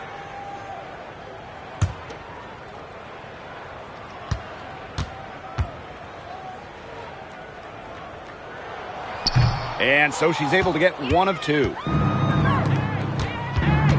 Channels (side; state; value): both; identical; correlation 1.00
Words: And so she's able to get 1 of 2.